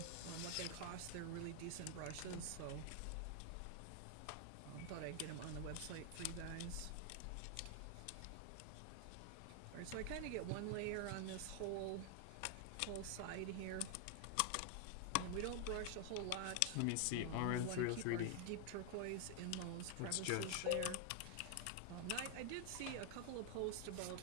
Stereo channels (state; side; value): different; both; correlation 0.00